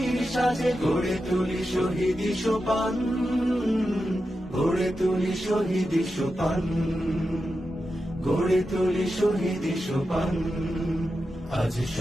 সাজে গড়ে তুলি শহীদি সোপান, গড়ে তুলি শহীদি সোপান, গড়ে তুলি শহীদি সোপান। আজ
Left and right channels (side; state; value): both; normal; correlation 0.90